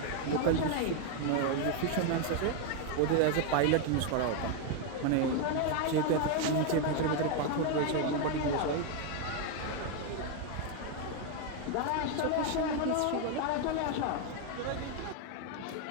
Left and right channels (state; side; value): different; both; correlation 0.01